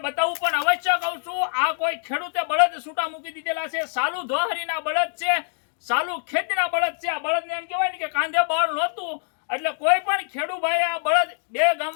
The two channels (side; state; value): right; silent; digital silence